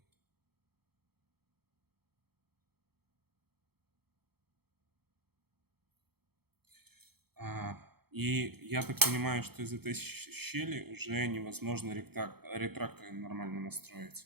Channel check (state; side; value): late; left; 0.96 ms